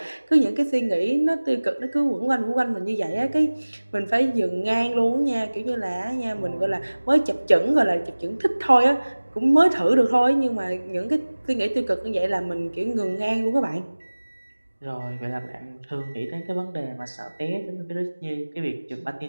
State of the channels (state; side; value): inverted; both; correlation -1.00